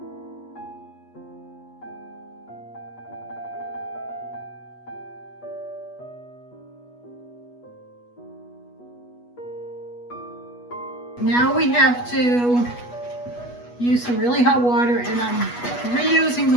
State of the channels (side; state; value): right; late; 8.2 ms